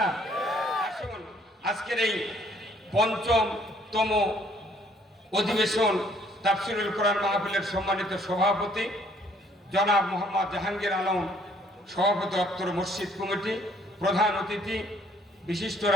আসুন, আজকের এই ৫ম অধিবেশন তাফসীরুল কোরআন মাহফিলের সম্মানিত সভাপতি জনাব মোহাম্মদ জাহাঙ্গীর আলম, সভাপতি অত্তর মসজিদ কমিটি, প্রধান অতিথি বিশিষ্ট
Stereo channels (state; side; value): normal; both; correlation 0.62